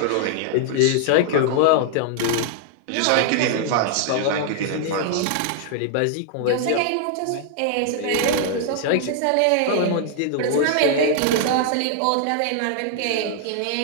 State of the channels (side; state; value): both; different; correlation 0.00